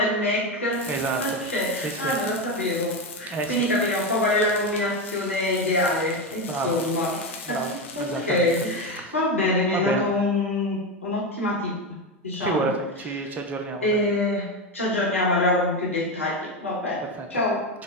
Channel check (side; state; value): both; normal; correlation 0.14